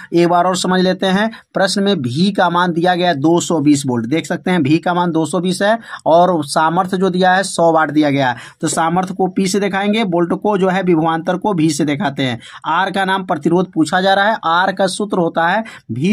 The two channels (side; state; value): both; identical; correlation 1.00